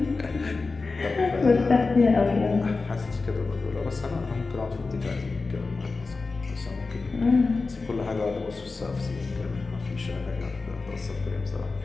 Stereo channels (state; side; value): quieter; right; 4.0 dB